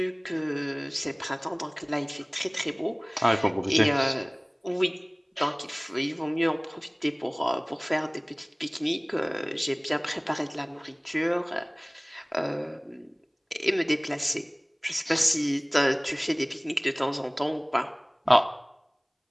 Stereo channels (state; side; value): identical; both; correlation 1.00